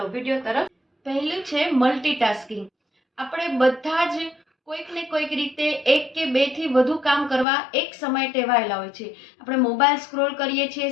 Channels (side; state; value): right; drops out; at 7.5 s